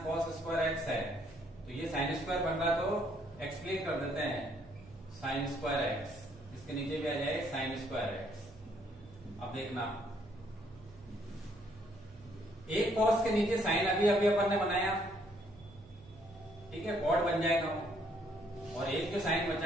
cos square x है, तो ये साइन स्क्वायर बन रहा तो एक्सप्लेन कर देते हैं साइन स्क्वायर x, इसके नीचे भी आ जाए साइन स्क्वायर x। अब देखना, एक cos के नीचे साइन अभी अपन ने बनाया, ठीक है, cot बन जाएगा, और एक जो साइन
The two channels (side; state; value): right; noise; hum, 24 dB below the sound